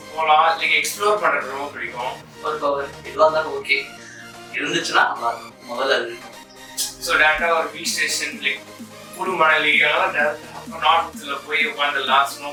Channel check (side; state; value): both; identical; correlation 1.00